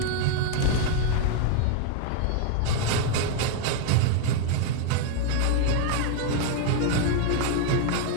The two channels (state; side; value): different; both; correlation 0.00